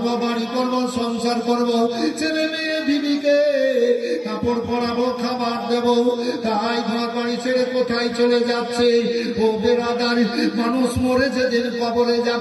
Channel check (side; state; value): both; identical; correlation 1.00